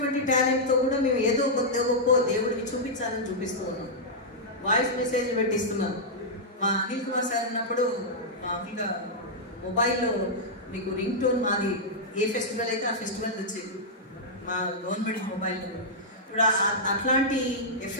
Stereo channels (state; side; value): normal; both; correlation -0.08